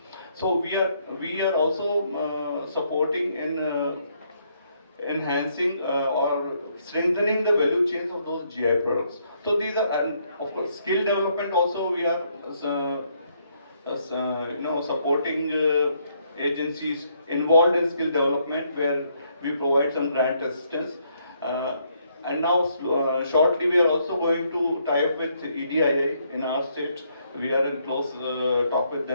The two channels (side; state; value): both; inverted; correlation -0.72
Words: So we are also supporting in enhancing or strengthening the value chains of those GI products. So these are, and of course, skill development also we are supporting agencies involved in skill development, where we provide some grant assistance. And now shortly we are also going to tie up with EDII in our state. We are in close talk with